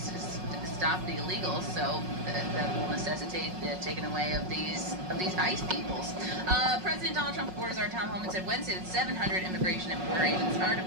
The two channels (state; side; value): late; left; 5.4 ms